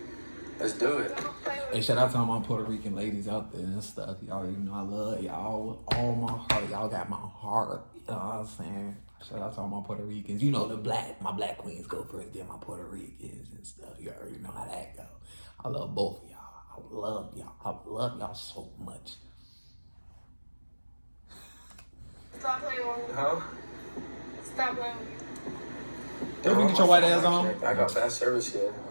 Let's do it. Hey, shout out to all my Puerto Rican ladies out there and stuff. Y'all already know I love y'all with all my heart. Y'all got my heart. You know what I'm saying? Shout out to all my Puerto Ricans. You know my black queens go first, then my Puerto Ricans and stuff. You already know how that go. I love both of y'all. I love y'all. I love y'all so much. Stop playing with me. Huh? Stop playing with me. Did we get your white ass on? I got bad service here.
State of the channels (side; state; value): both; inverted; correlation -1.00